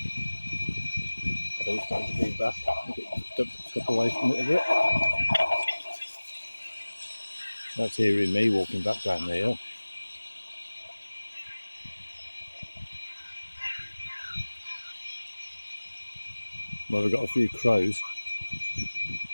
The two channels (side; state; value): both; inverted; correlation -1.00